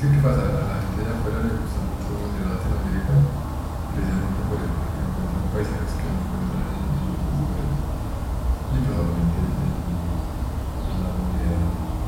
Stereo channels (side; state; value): both; identical; correlation 1.00